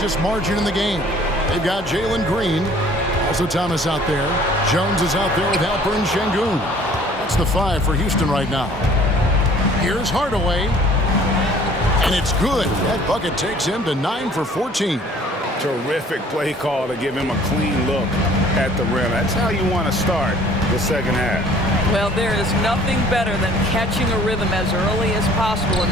margin in the game. They've got Jalen Green. Also Thomas out there. Jones is out there with Alperen Sengun. That's the 5 for Houston right now. Here's Hardaway. And it's good. That bucket takes him to 9 for 14. Terrific play call to give him a clean look at the rim. That's how you want to start the second half. Well, there is nothing better than catching a rhythm as early as possible. And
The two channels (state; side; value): normal; both; correlation 0.53